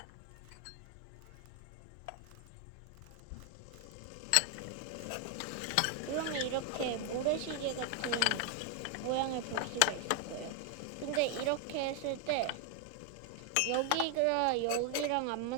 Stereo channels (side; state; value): both; different; correlation 0.01